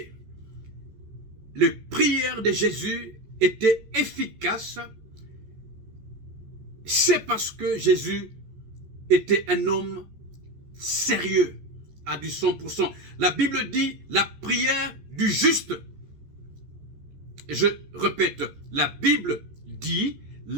Les prières de Jésus étaient efficaces. C'est parce que Jésus était un homme sérieux à du 100%. La Bible dit la prière du juste. Je répète, la Bible dit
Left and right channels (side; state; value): left; late; 14 ms